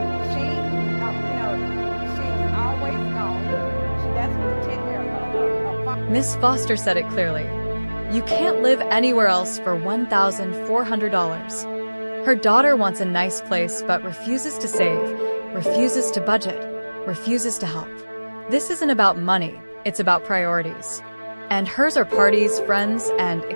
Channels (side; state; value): both; inverted; correlation -1.00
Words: She, she's always gone. She doesn't attend her Miss Foster said it clearly. You can't live anywhere else for $1,400. Her daughter wants a nice place but refuses to save, refuses to budget, refuses to help. This isn't about money, it's about priorities. And hers are parties, friends, and